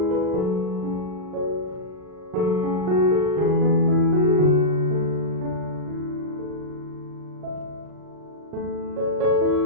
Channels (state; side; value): late; left; 39 ms